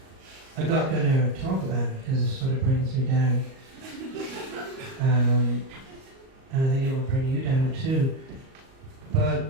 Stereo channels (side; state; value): left; late; 38 ms